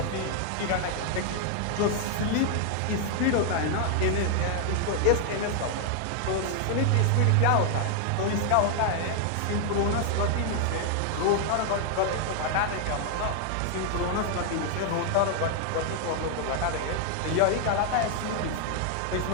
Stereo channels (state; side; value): different; both; correlation 0.00